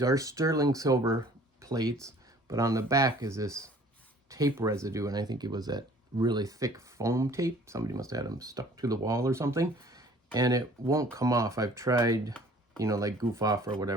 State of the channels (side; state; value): both; normal; correlation 0.52